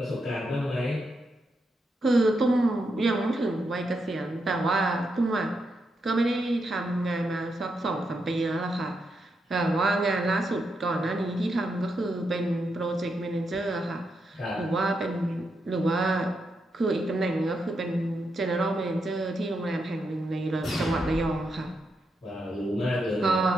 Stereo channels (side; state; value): both; normal; correlation 0.83